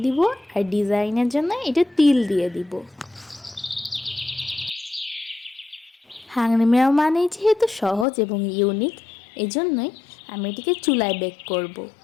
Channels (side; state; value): right; drops out; at 8.1 s